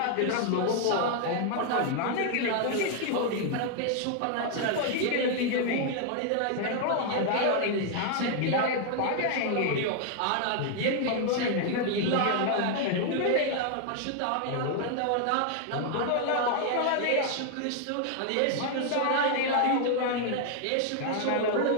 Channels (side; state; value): both; different; correlation 0.00